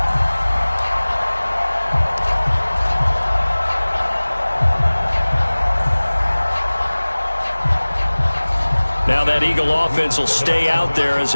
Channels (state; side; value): inverted; both; correlation -1.00